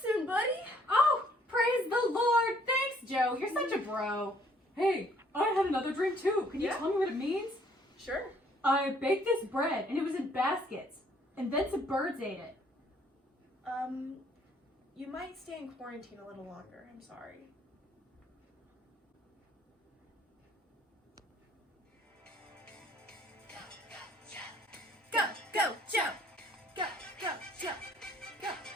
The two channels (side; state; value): both; normal; correlation 0.62